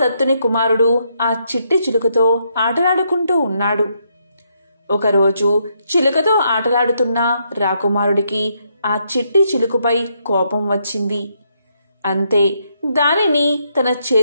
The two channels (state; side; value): inverted; both; correlation -0.76